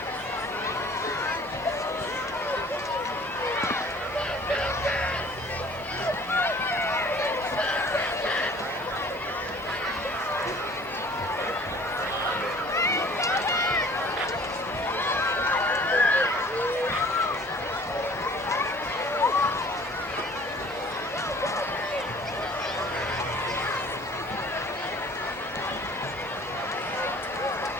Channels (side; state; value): both; normal; correlation 0.50